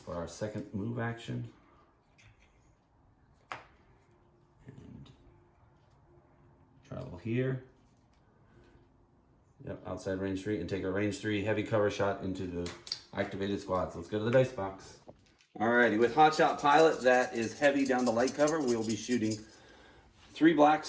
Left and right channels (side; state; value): both; identical; correlation 1.00